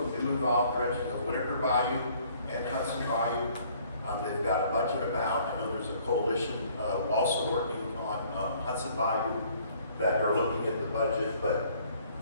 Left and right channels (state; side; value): inverted; both; correlation -0.59